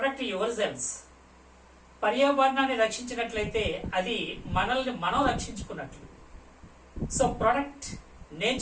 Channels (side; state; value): both; identical; correlation 1.00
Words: your selves. పర్యావరణాన్ని రక్షించినట్లయితే అది మనల్ని మనం రక్షించుకున్నట్లు. So protect